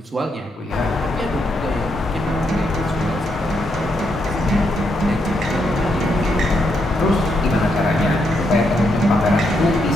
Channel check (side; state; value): both; normal; correlation 0.79